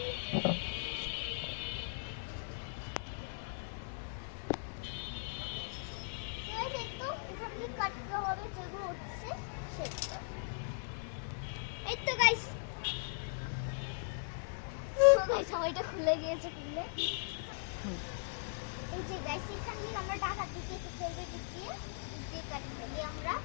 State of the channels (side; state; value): right; silent; 52 dB below the other